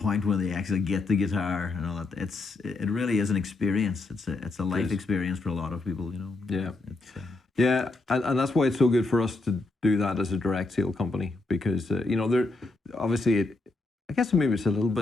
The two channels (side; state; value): right; quieter; 3.3 dB